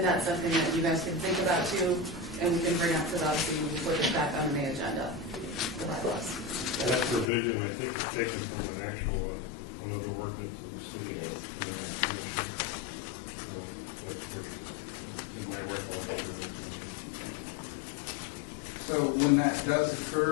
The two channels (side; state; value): right; drops out; at 7.3 s